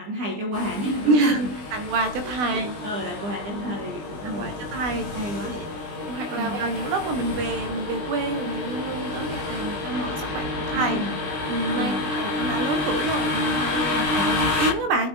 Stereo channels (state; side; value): late; left; 20 ms